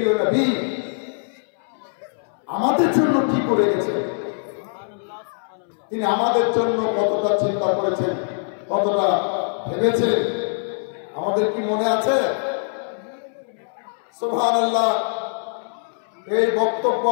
নবী আমাদের জন্য কি করে গেছে, তিনি আমাদের জন্য কতটা চিন্তা করেছেন, কতটা ভেবেছেন, আমাদের কি মনে আছে? সুবহানাল্লাহ। এই বক্তব্য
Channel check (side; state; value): right; silent; 64 dB below the other